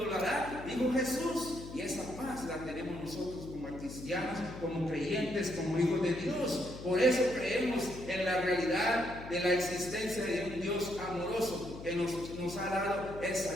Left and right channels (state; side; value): noise; left; hum, 12 dB below the sound